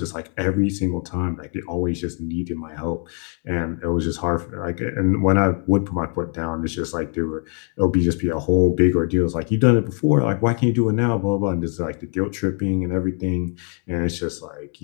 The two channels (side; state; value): right; quieter; 39.8 dB